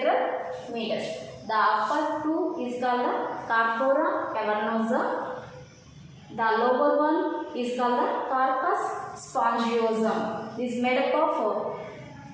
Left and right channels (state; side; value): identical; both; correlation 1.00